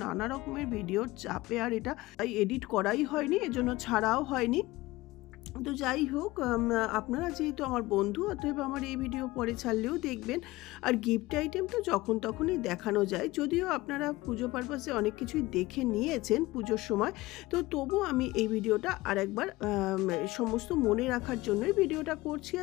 নানা রকমের ভিডিওর চাপে আর এটা এডিট করাই হয়নি, এজন্য ছাড়াও হয়নি। তো যাই হোক, আপনারা যেহেতু আমার বন্ধু, অতএব আমার এই ভিডিও পরে ছাড়লেও দেখবেন। আর গিফট আইটেম তো যখন তখনই দেখানো যায়, যদিও আপনারা পুজো পারপাসে অনেক কিছুই দেখে নিয়েছেন পুজোর সময়, তো তবু আমি এই ভিডিওটা আরেকবার সমস্ত মনে রাখার জন্যই ভিডিওটা করছি,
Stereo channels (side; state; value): right; quieter; 19.6 dB